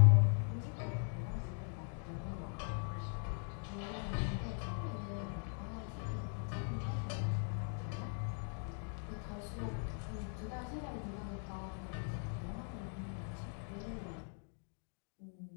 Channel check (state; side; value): silent; right; 51 dB below the other